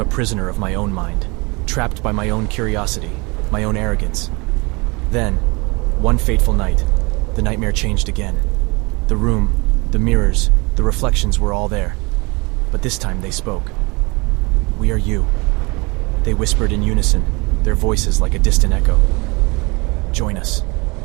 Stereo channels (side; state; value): left; quieter; 27.2 dB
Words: prisoner of my own mind, trapped by my own curiosity, my own arrogance. Then, one fateful night, the nightmare changed again. The room, the mirrors, the reflections were all there. But this time they spoke. "We are you." They whispered in unison, their voices like a distant echo. "Join us."